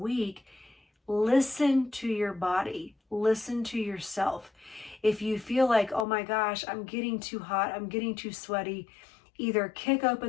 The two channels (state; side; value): drops out; right; at 6.1 s